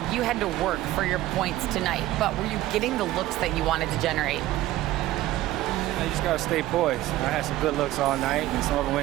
you had to work for your points tonight, but were you getting the looks that you wanted to generate? You just got to stay poised. I had some good looks all night, and some of them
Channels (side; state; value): left; quieter; 15.5 dB